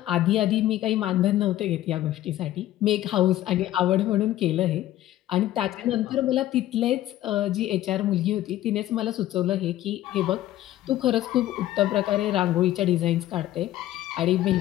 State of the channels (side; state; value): right; quieter; 14.0 dB